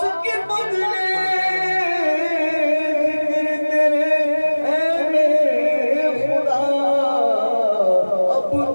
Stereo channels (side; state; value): both; inverted; correlation -1.00